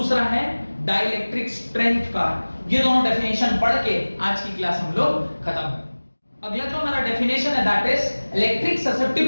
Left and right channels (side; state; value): both; inverted; correlation -1.00